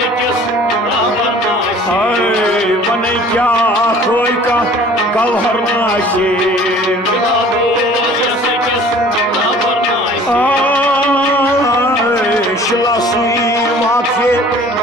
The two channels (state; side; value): normal; both; correlation 0.49